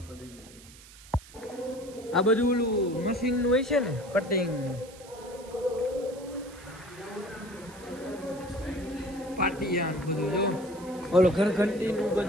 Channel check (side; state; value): right; noise; hiss, 20 dB below the sound